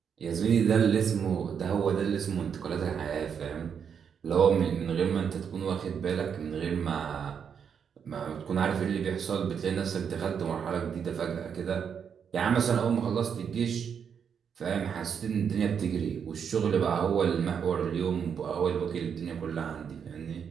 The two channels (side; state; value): left; quieter; 7.3 dB